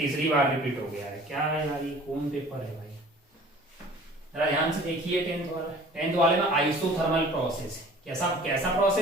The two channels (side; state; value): both; normal; correlation 0.47